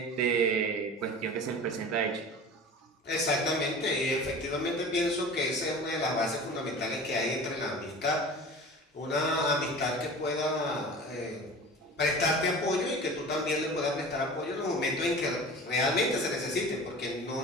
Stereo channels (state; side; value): normal; both; correlation 0.37